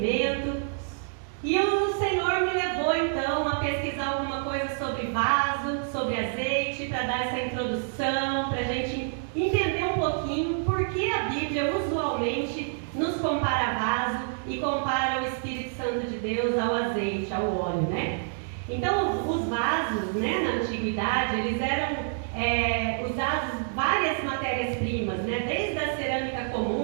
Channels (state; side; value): silent; left; digital silence